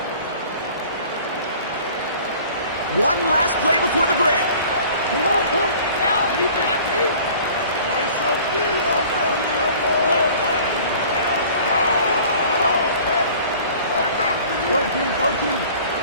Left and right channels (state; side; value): inverted; both; correlation -0.48